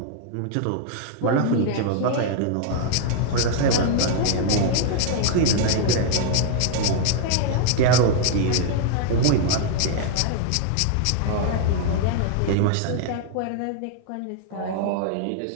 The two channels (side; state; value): both; different; correlation 0.00